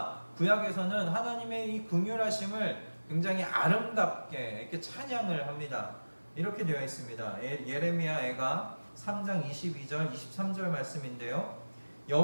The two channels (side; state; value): both; inverted; correlation -1.00